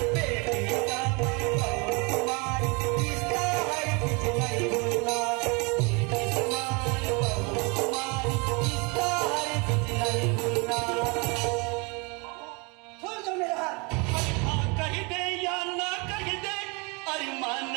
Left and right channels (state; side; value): quieter; left; 30.3 dB